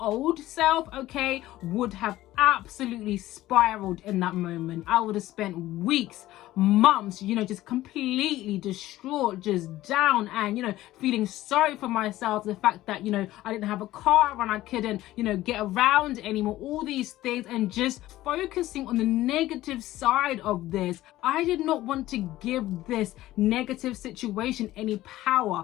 old self, okay, would have absolutely spiraled in that moment. I would have spent weeks, months, just completely distraught, just down, and feeling sorry for myself. The fact that I didn't have a car and I couldn't get around anymore, all these things, and just focusing on the negative side of this. I did not want to give this negative situation any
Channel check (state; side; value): quieter; right; 15.6 dB